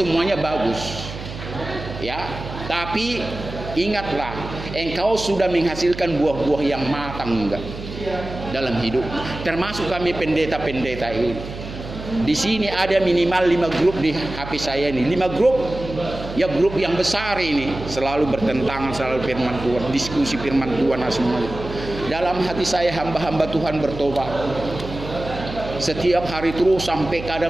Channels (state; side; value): noise; right; hum, 11 dB below the sound